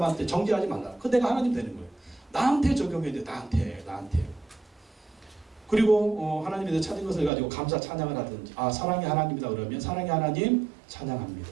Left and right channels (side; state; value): left; drops out; at 7.3 s